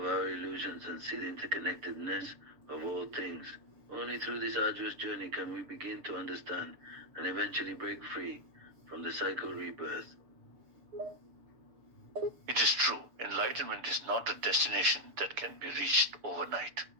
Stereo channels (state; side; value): late; left; 6.9 ms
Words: our illusions and see the interconnectedness of all things. Only through this arduous journey can we begin to understand and eventually break free from the cycle of rebirth. It is true, enlightenment is not a destination that can be reached overnight.